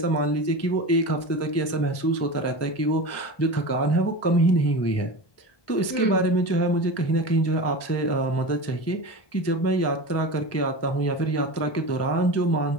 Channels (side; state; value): right; late; 1.2 ms